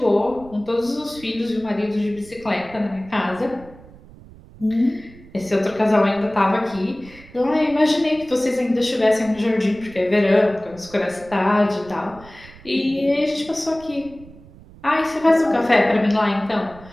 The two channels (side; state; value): right; noise; rumble, 21 dB below the sound